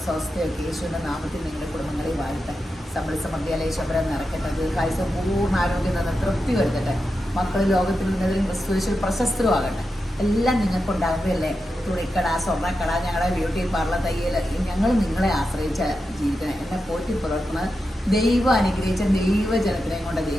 സ്വസ്ഥയൊക്കെ യേശുവിൻ്റെ നാമത്തിൽ നിങ്ങളുടെ കുടുംബങ്ങളെ വാഴട്ടെ. സമ്പൽ സമൃദ്ധിയാൽ ഈശ്വരൻ നിറയ്ക്കട്ടെ. ദീർഘായുസ്സും പൂർണ്ണ ആരോഗ്യം നിന്ന് തൃപ്തി വരുത്തട്ടെ. മക്കൾ ലോകത്തിൽ ഉന്നതിലും ക്രിസ്തുവിൽ പ്രശസ്തരുമാകട്ടെ. എല്ലാം നിങ്ങൾക്കുണ്ടാകുമ്പോഴല്ലേ തുണിക്കട, സ്വർണ്ണക്കട, ഞങ്ങളുടെ ബ്യൂട്ടി പാർലർ, തയ്യൽ, ഞങ്ങൾ നിങ്ങളെ ആശ്രയിച്ച് ജീവിക്കണം. എന്നെ പോറ്റി പുലർത്തുന്നത് ദൈവം അനുഗ്രഹിച്ച ദൈവജനത്തിനെയും കൊണ്ട്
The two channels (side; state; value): both; normal; correlation 0.89